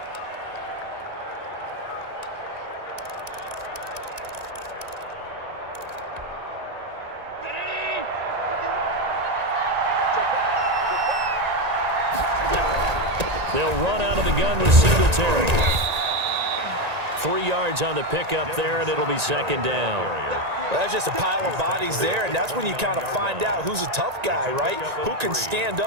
They'll run out of the gun with Singletary. 3 yards on the pickup there, and it'll be second down. Well, that's just a pile of bodies there, and that's when you kind of find out who's a tough guy, right? Who can stand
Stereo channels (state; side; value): late; left; 1.9 ms